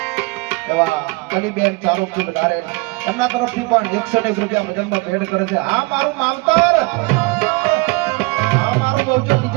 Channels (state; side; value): quieter; left; 26.0 dB